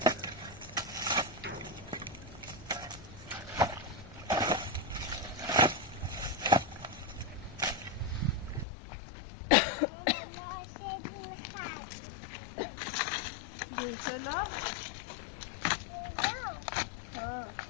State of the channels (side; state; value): right; drops out; at 8.7 s